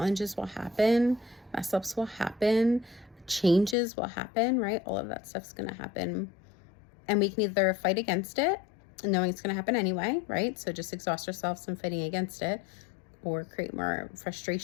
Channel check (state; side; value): drops out; right; at 3.8 s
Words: will happen. Mess ups will happen. Changes will happen, right? All of that stuff's going to happen. And we can either fight against it, knowing it's going to happen anyway, right? So just exhaust ourselves in fighting against it, or create more